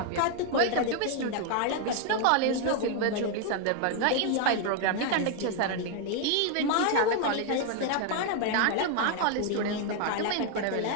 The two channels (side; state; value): both; different; correlation 0.01